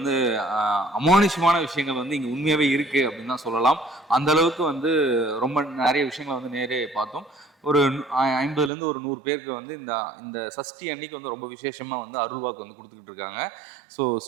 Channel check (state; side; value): drops out; left; at 8.7 s